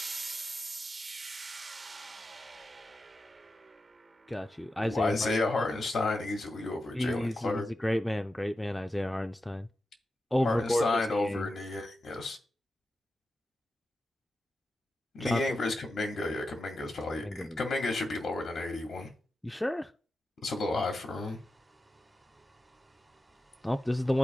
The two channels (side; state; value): both; normal; correlation 0.90